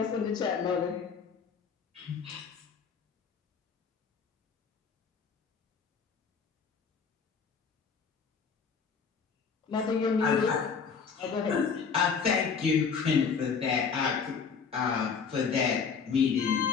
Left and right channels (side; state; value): right; quieter; 5.9 dB